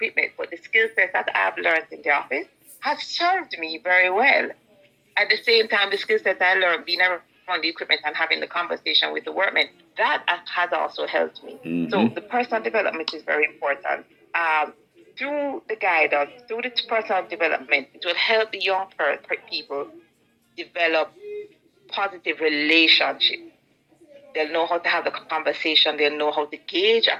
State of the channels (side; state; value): both; identical; correlation 1.00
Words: But the skill sets that I've learned in the office has served me very well. At the same time, the skill sets I learned being around the equipment and having the conversation with the workmen, that has also helped me. So the personal development is very important. Through the guidance, through the personal development, it will help the young people develop positive relationships. They'll know how to have the conversation. They'll know how to gauge a